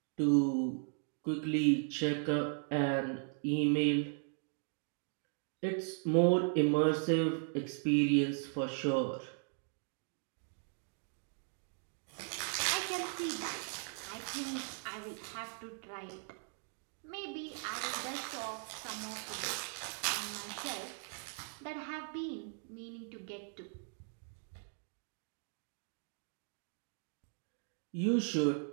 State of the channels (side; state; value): left; silent; 53 dB below the other